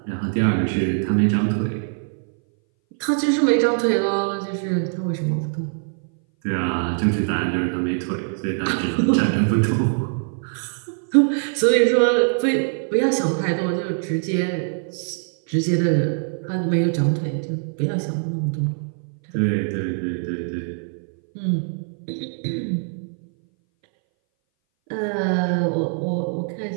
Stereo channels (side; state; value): left; silent; 60 dB below the other